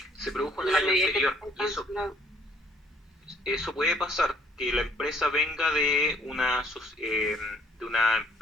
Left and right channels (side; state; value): both; normal; correlation 0.62